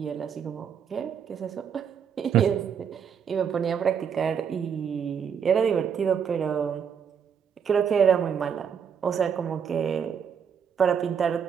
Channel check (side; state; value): left; quieter; 7.5 dB